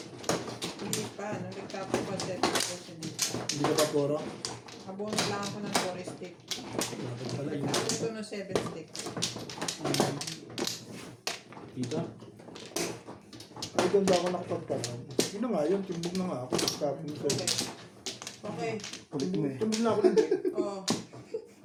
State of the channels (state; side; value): identical; both; correlation 1.00